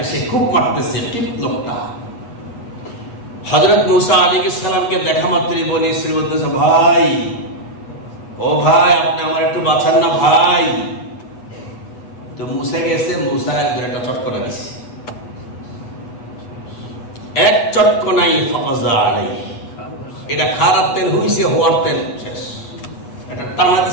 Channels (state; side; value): late; right; 8.8 ms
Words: সে খুব মারতেছে, কিপ্ত লোকটা। হযরত মূসা আলাইহিস সালামকে দেখা মাত্রই বনি ইসরাইল বলতেছে, ভাই, ও ভাই, আপনি আমার একটু বাঁচান না ভাই। তো মূসা গেছে, মূসা একটা চটকনা দিছে, এক চটকনাই ফাযা আলাইহি, এটা খারাপ তেল হইছে, হওয়ার তেল শেষ, এটা টানা